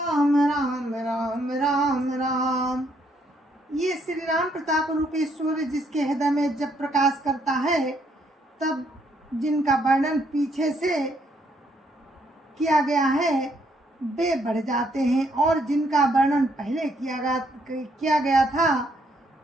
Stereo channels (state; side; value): normal; both; correlation 0.71